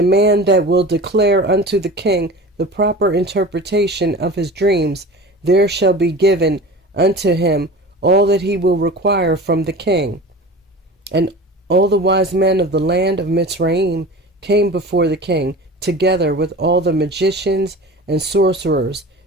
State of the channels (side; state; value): both; normal; correlation 0.36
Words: man that will declare unto the king the proper interpretation of his dreams, there shall be given unto him all that he will require from the king. And all the wise men of the land of Mitzrayim came before the king, together with all the magicians and sorcerers